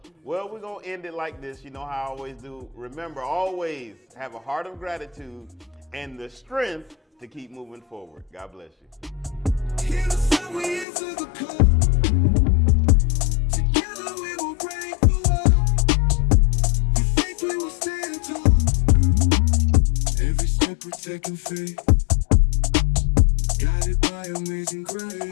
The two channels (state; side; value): drops out; right; at 10.9 s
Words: Well, we're going to end it like this. You know how I always do. Remember, always have a heart of gratitude and the strength to keep moving forward. God bless you. Here's how we answer the call. Together we will break the wall. With faith we will stand tall. Every step we're taking faith, guided by amazing